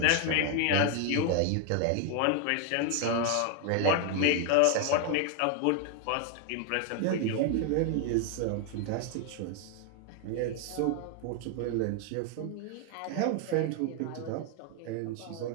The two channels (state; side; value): different; both; correlation 0.00